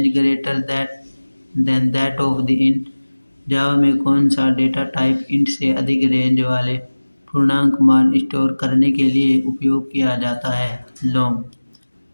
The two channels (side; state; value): both; inverted; correlation -1.00